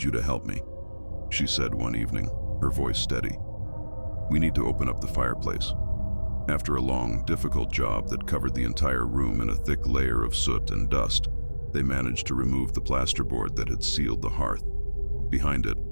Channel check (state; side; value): inverted; both; correlation -1.00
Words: you to help me," she said one evening, her voice steady. "We need to open up the fireplace." After a long, difficult job that covered the entire room in a thick layer of soot and dust, they managed to remove the plasterboard that had sealed the hearth. Behind it,